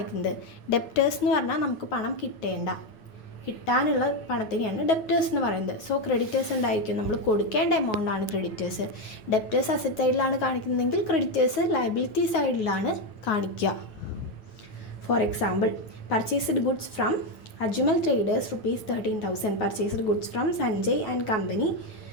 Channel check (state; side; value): late; right; 9.3 ms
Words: ഡെപ്റ്റേഴ്സ് എന്ന് പറഞ്ഞാൽ നമുക്ക് പണം കിട്ടാനുള്ള പണത്തിനെയാണ് ഡെപ്റ്റേഴ്സ് എന്ന് പറയുന്നത്. സോ ക്രെഡിറ്റേഴ്സ് ഉണ്ടായിരിക്കും, നമ്മൾ കൊടുക്കേണ്ട എമൗണ്ട് ആണ് ക്രെഡിറ്റേഴ്സ്. ഡെപ്റ്റേഴ്സ് അസറ്റ് സൈഡിലാണ് കാണിക്കുന്നതെങ്കിൽ ക്രെഡിറ്റേഴ്സ് ലയബിലിറ്റി സൈഡിലാണ് കാണിക്കുക. For example purchased goods from Ajmal traders ₹13,000. Purchased goods from Sanjay and company